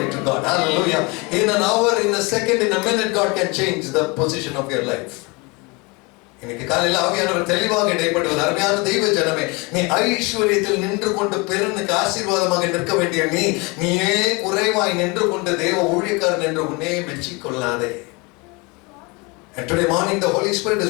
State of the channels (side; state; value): right; quieter; 27.6 dB